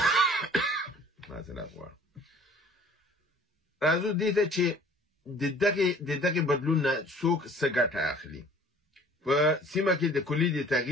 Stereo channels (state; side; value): normal; both; correlation 0.51